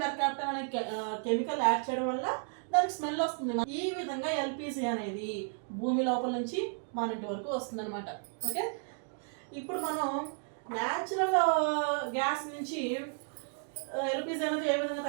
మెర్కాప్టన్ అనే కెమికల్ యాడ్ చేయడం వల్ల దానికి స్మెల్ వస్తుంది. ఈ విధంగా ఎల్పిజి అనేది భూమి లోపల నుంచి మన ఇంటి వరకు వస్తుంది అనమాట. ఓకే, ఇప్పుడు మనం న్యాచురల్ గ్యాస్ నుంచి ఎల్పిజి అనేది ఏ విధంగా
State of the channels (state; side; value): silent; left; 56 dB below the other